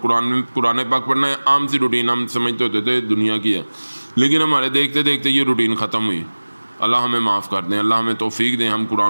قرآن پاک پڑھنا ہے، عام سی روٹین ہم سمجھتے ہوتے تھے دنیا کی ہے، لیکن ہمارے دیکھتے دیکھتے یہ روٹین ختم ہوئی۔ اللہ ہمیں معاف کر دیں، اللہ ہمیں توفیق دیں، ہم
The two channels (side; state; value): both; inverted; correlation -1.00